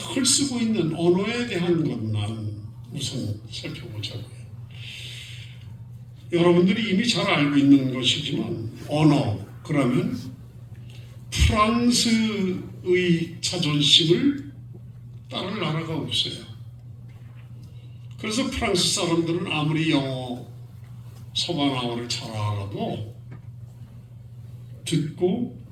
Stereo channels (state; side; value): identical; both; correlation 1.00